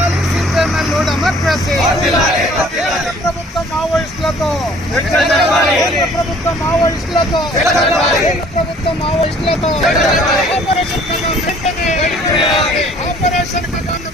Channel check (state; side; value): normal; both; correlation 0.55